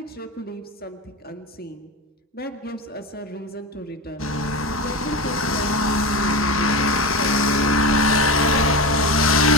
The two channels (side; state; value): both; normal; correlation 0.22